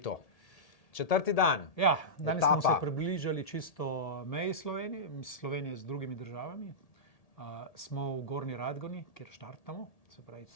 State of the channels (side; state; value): right; late; 1.8 ms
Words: 4. dan. Ja, danes smo se etapa. približali čisto meji Slovenije z drugimi državami. Smo v Gornji Radgoni, kjer štartamo, se pravi,